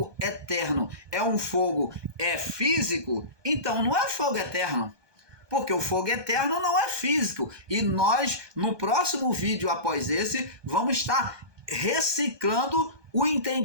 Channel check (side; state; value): left; late; 1.2 ms